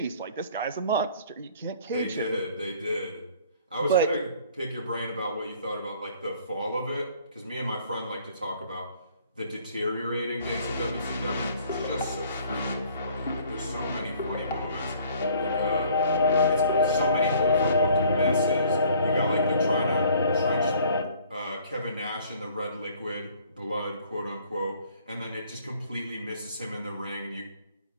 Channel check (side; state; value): both; inverted; correlation -0.57